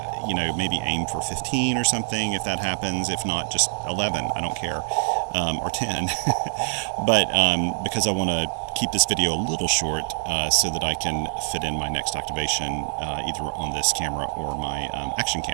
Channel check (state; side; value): silent; left; 62 dB below the other